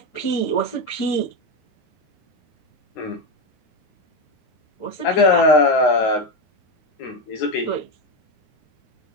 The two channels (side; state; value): right; late; 9.5 ms